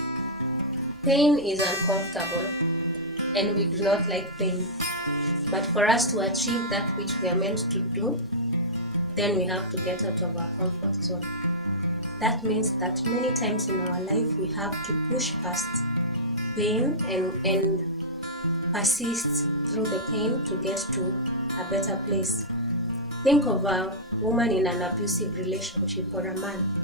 Pain is uncomfortable, and we do not like pain. But for us to achieve that which we are meant to do, then we have to get out of our comfort zone. That means that many times in our life we have to push past pain and persist through the pain to get to a better place. Think of a woman in an abusive relationship or a man.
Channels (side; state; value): both; normal; correlation -0.12